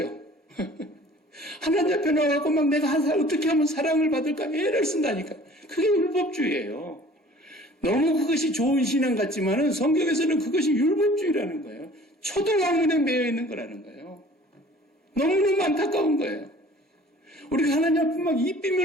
하나님 앞에 나와갖고 막 내가 어떻게 하면 사랑을 받을까 애를 쓴다니까. 그게 율법주의예요. 너무 그것이 좋은 신앙 같지만은 성경에서는 그것이 율법주의라는 거예요. 초등학문에 매여 있는 거라는 거예요. 너무너무 안타까운 거예요. 우리가 하나님 앞에 막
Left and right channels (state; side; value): normal; both; correlation 0.49